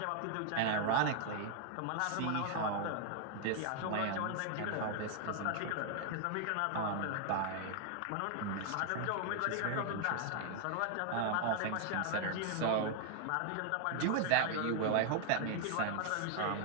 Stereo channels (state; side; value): different; both; correlation 0.00